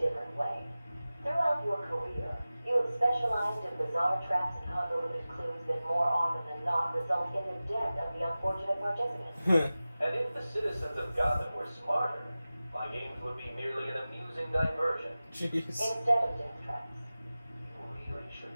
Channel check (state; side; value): inverted; both; correlation -0.96